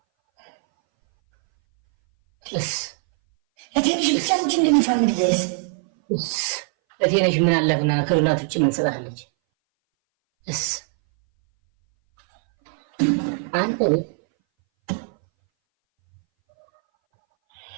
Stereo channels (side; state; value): left; silent; 61 dB below the other